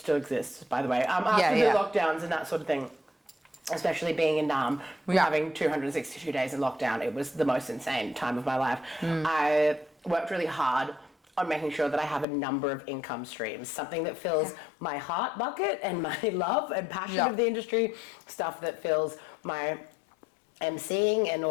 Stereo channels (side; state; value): right; drops out; at 12.2 s